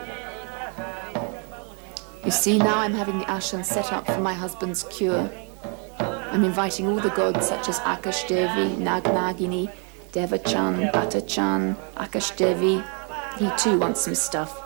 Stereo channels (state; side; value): quieter; left; 37.7 dB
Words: You see, now I'm having the ashram set up for my husband's cure. I'm inviting all the gods such as Akash Devi, Nag Nagini, Devachan, Batachan, Akash Devi. He too wants some stuff,